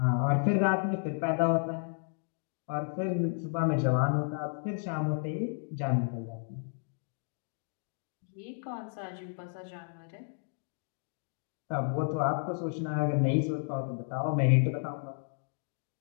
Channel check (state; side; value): silent; right; 56 dB below the other